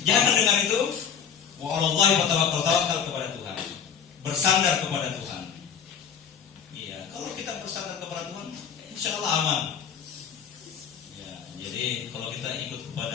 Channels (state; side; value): quieter; right; 7.4 dB